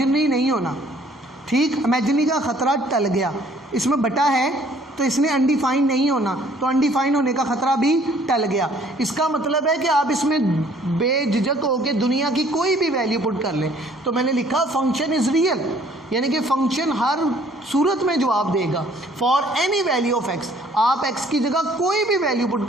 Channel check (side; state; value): both; normal; correlation 0.59